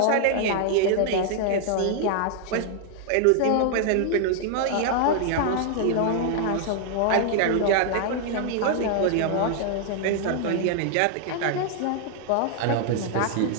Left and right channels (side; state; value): both; different; correlation 0.00